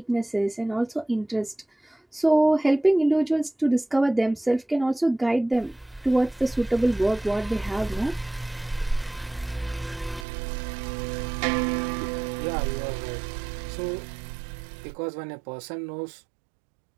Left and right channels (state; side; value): drops out; left; at 10.2 s